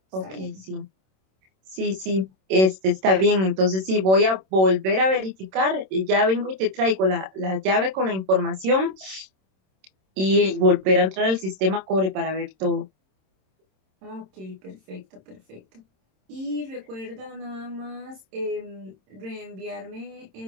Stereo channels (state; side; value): late; left; 26 ms